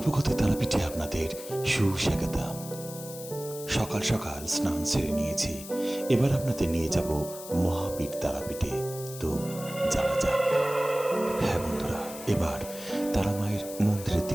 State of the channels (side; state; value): left; noise; hiss, 13 dB below the sound